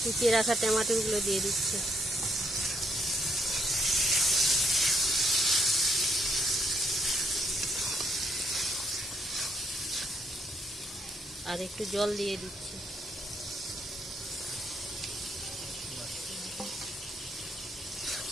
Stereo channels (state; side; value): normal; both; correlation 0.72